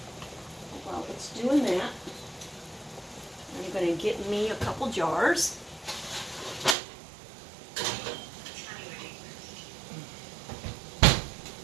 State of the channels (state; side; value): drops out; left; at 6.8 s